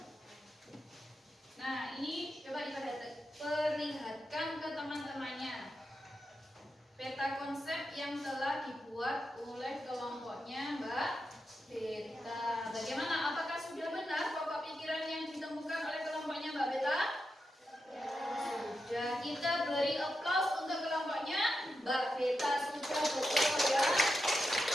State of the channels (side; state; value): both; normal; correlation 0.88